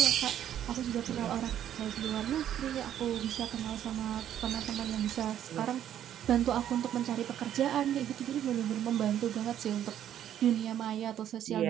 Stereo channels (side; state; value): left; quieter; 10.6 dB